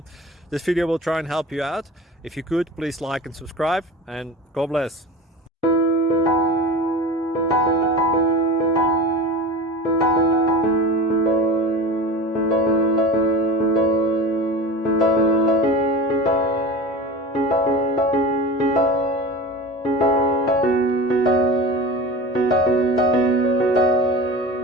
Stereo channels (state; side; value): normal; both; correlation 0.32